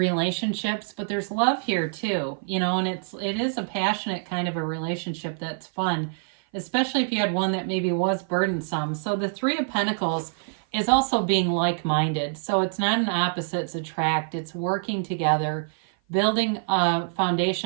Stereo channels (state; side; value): silent; left; 56 dB below the other